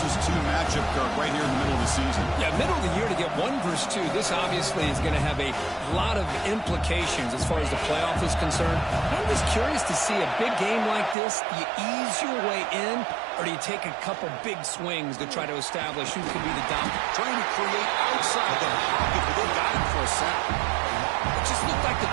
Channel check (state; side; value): drops out; left; at 11.2 s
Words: 2 matchup, Kirk, right here in the middle of the season. Yeah, middle of the year to get 1 versus 2. This obviously is going to have a lot of implications as far as the playoff is concerned. I'm just curious to see a big game like this. Do you ease your way in, or do you take a couple big swings to try to establish who could be the dominant? Trying to create outside the pocket, but they got him for a sack. It just looked like the